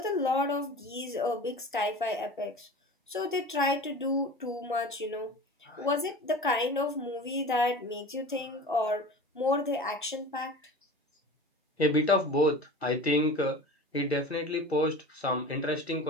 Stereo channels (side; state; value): both; normal; correlation 0.36